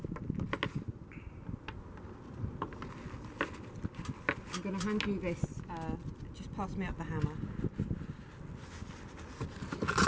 I'm going to hand you this. Just pass me up the hammer.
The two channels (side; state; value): both; identical; correlation 1.00